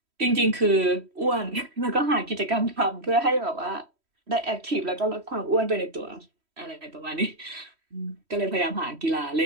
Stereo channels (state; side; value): late; left; 3.1 ms